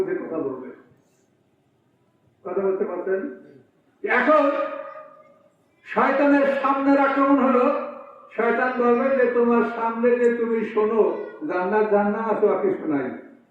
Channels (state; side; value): identical; both; correlation 1.00